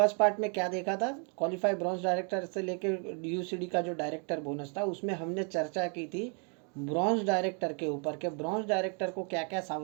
पार्ट में क्या देखा था, क्वालिफाई ब्रॉन्ज डायरेक्टर से लेकर यूसीडी का जो डायरेक्टर बोनस था उसमें हमने चर्चा की थी ब्रॉन्ज डायरेक्टर के ऊपर के ब्रॉन्ज डायरेक्टर को क्या क्या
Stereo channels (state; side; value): quieter; left; 38.9 dB